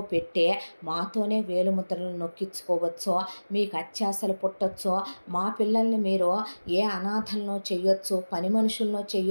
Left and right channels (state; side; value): inverted; both; correlation -1.00